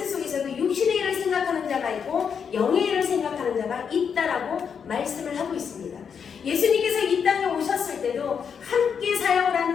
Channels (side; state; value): right; quieter; 6.9 dB